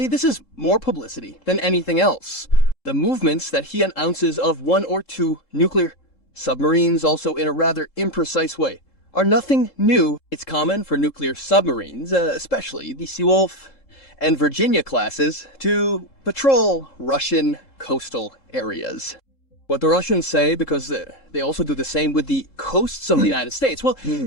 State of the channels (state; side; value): late; right; 3.7 ms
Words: this is more publicity than anything else. The movements that he announces of 1 or 2 nuclear submarines, also in a rather imprecise way, are nothing new. It's common for nuclear submarines, especially the Seawolf and Virginia classes, to patrol Russian coastal areas. What the Russians say, because they also do the same with the coasts of the United States, well,